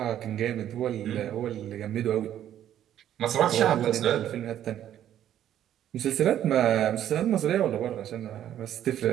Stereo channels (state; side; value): quieter; left; 11.1 dB